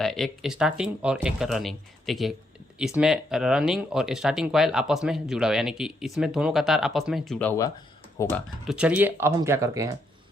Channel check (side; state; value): both; normal; correlation 0.76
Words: है, एक स्टार्टिंग और एक रनिंग। देखिए इसमें रनिंग और स्टार्टिंग कॉइल आपस में जुड़ा हुआ, यानी कि इसमें दोनों का तार आपस में जुड़ा हुआ होगा। तो चलिए अब हम क्या करते हैं,